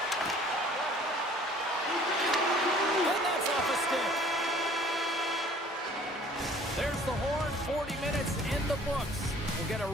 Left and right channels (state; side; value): normal; both; correlation 0.53